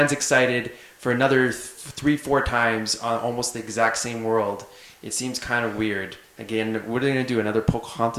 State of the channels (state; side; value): identical; both; correlation 1.00